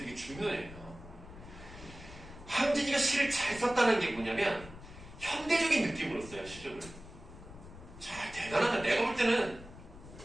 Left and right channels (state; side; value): noise; left; rumble, 16 dB below the sound